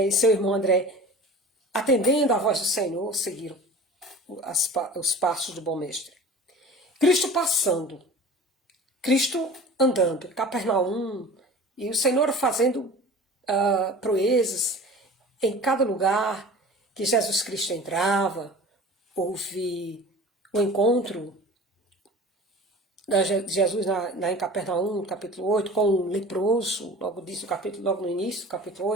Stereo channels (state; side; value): normal; both; correlation 0.40